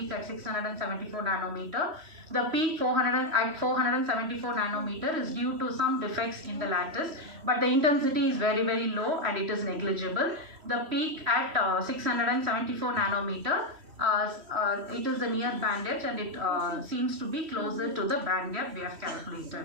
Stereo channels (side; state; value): left; late; 3.1 ms